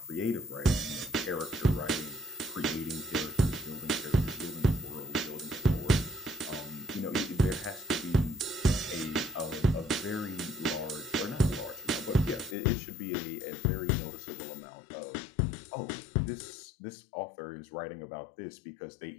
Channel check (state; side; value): drops out; right; at 12.6 s